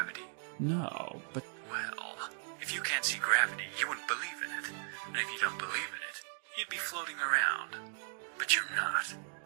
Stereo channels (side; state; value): left; silent; digital silence